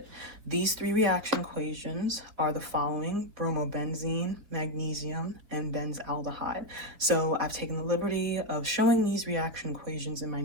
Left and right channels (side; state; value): left; late; 4.5 ms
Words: These 3 reaction equations are the following: bromobenzene, magnesium, and benzaldehyde. So I've taken the liberty of showing these reaction equations in my